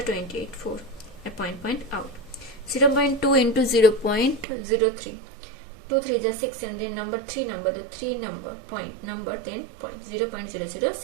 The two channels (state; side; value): drops out; left; at 4.5 s